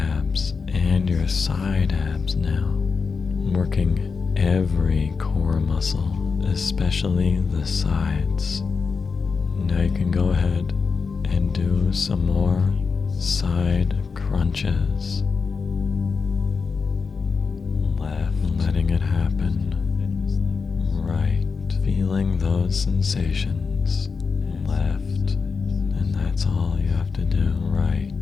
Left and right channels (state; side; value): quieter; right; 5.1 dB